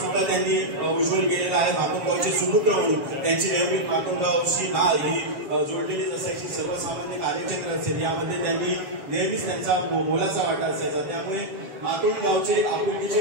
त्यांनी उज्ज्वल केलेलं आहे. मातोंड गावचे सुपुत्र म्हणून त्यांची नेहमी मातोंड गावची नाळ ही जोडलेलीच असायची. सर्वसामान्य कार्यक्षेत्र असेल यामध्ये त्यांनी नेहमीच त्यांचा मोलाचा वाटा असायचा. त्यामुळे मातोंड गावचे आपुलकीचे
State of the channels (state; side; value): late; left; 7.2 ms